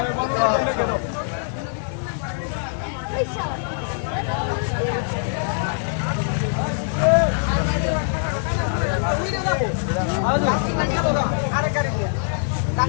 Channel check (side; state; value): right; silent; digital silence